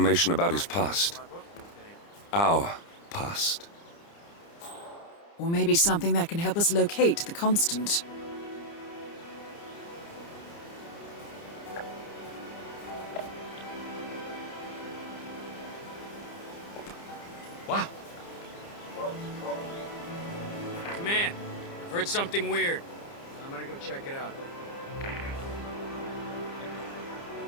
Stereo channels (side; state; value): right; late; 29 ms